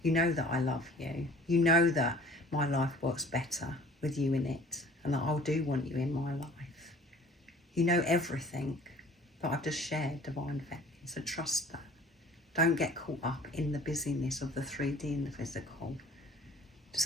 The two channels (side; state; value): both; normal; correlation 0.49